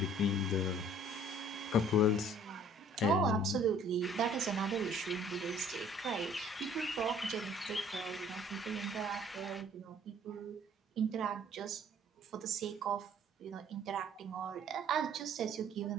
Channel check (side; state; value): both; normal; correlation 0.55